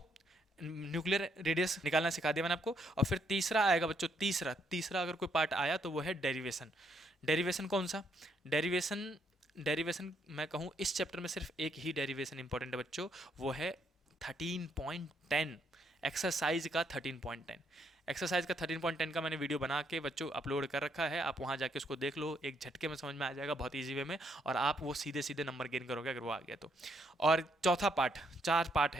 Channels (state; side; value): normal; both; correlation 0.73